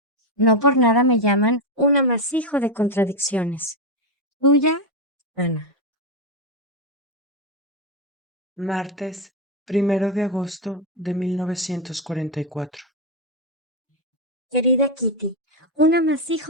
No por nada me llaman un amasijo de contradicciones. Tuya, Ana. Martes, 1 de agosto de 1944. Querida Kitty, un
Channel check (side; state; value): both; normal; correlation 0.05